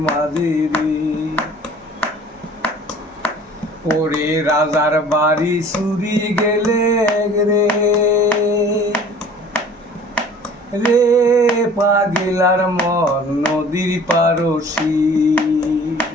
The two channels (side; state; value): both; normal; correlation 0.48